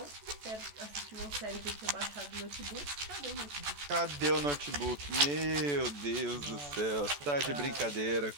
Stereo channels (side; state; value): left; late; 14 ms